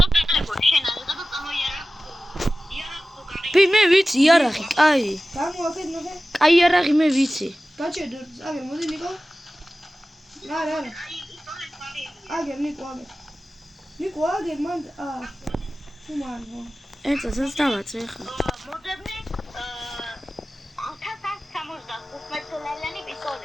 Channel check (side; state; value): both; normal; correlation 0.96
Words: ტელეფონი შენ არ და წამოიარა. მე ვიცი იარაღი, კაი. გამოაკეთ ნახე. კაი იარაღი მე ვიცი. გაჩერდო, აგერ, მოდი ნიკო. არა. აგერ, ნიკო, აგერ. ნიკო, აგერ, მან თუ მან. ეცასაც დავაწვე ხა. მოძებნე 1165